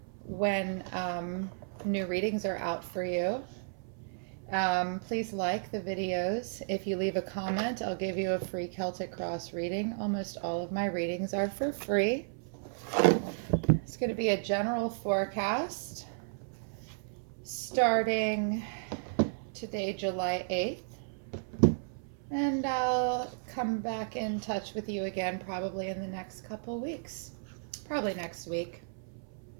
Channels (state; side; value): silent; left; 56 dB below the other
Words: when new readings are out for you. Please like the videos. If you leave a comment, I'll give you a free Celtic Cross reading. Almost all of my readings are for free. It's going to be a general forecast starting today, July 8th, and I'll come back in touch with you again probably in the next couple weeks, probably next week,